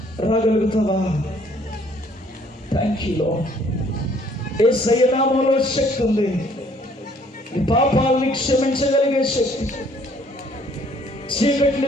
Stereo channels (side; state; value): both; normal; correlation 0.60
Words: రాగలుగుతావా? Thank you lord. యేసయ్య నామములో శక్తి ఉంది. నీ పాపాలని క్షమించగలిగే శక్తి,